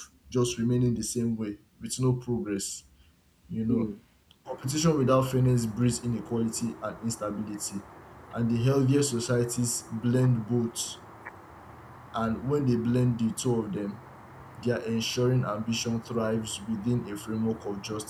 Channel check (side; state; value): both; identical; correlation 1.00